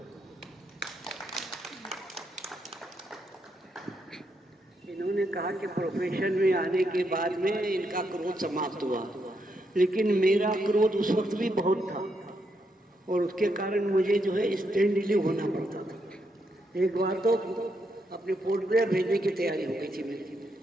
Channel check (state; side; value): normal; both; correlation 0.79